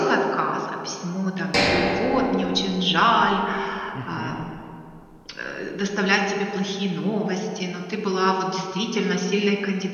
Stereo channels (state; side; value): identical; both; correlation 1.00